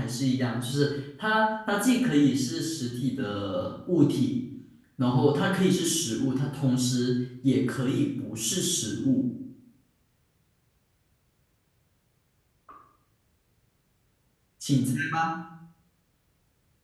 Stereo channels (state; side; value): identical; both; correlation 1.00